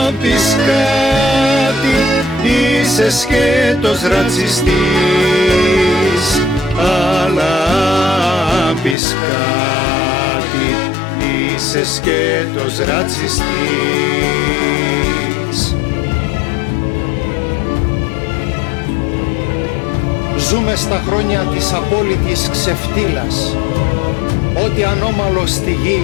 πεις κάτι, είσαι σκέτος ρατσιστής. Αλλά πεις κάτι, είσαι σκέτος ρατσιστής. Ζούμε στα χρόνια της απόλυτης ξεφτύλας. Ό,τι ανώμαλο στη γη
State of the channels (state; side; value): drops out; right; at 9.0 s